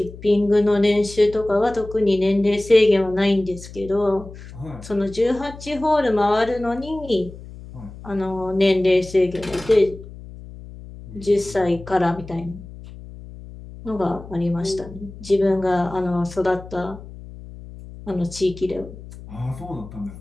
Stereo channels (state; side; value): noise; left; hum, 15 dB below the sound